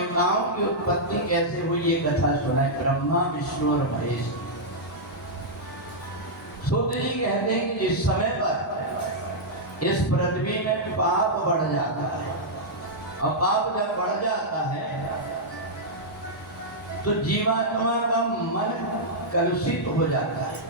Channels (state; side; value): normal; both; correlation -0.07